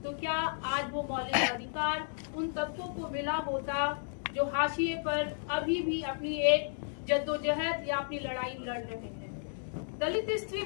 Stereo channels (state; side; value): silent; right; digital silence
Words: तो क्या आज वो मौलिक अधिकार उन तबकों को मिला होता जो हाशिए पर अभी भी अपनी एक जद्दोजहद या अपनी लड़ाई लड़ रहे हैं। दलित स्त्री